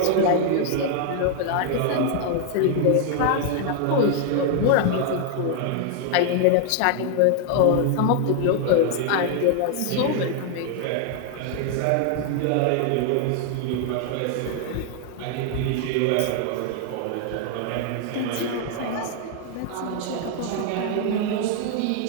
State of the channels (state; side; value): different; both; correlation 0.00